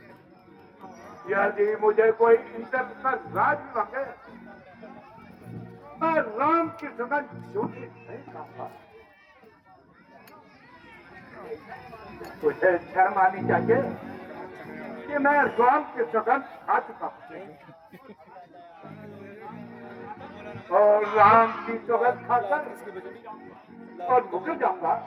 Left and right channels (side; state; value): both; identical; correlation 1.00